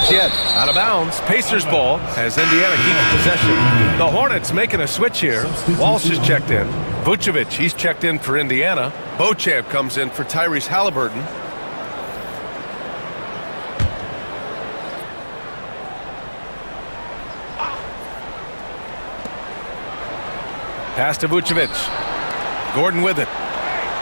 yet. Out of bounds. Pacers ball as Indiana keeps possession. The Hornets making a switch here. Walsh is checked in. Vucevic, he's checked in for Indiana. Beauchamp comes in for Tyrese Halliburton. Pass to Vucevic. Gordon with it.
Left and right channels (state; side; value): inverted; both; correlation -1.00